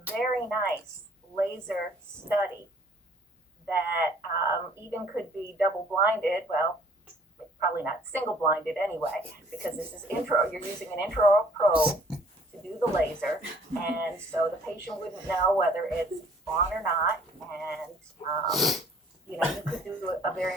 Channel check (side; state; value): both; normal; correlation 0.57